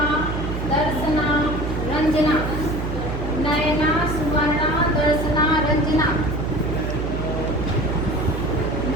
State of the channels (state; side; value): noise; right; hum, 4 dB below the sound